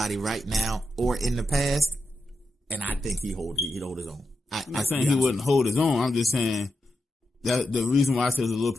right now or in the past, and I think he'd hold his own. I'm not saying he wouldn't hold his own. I'm just saying that the reason why I said it's a little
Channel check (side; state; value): both; normal; correlation 0.88